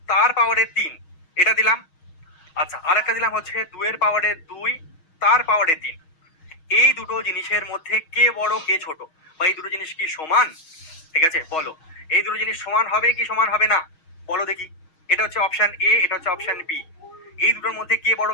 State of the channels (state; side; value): late; right; 6.3 ms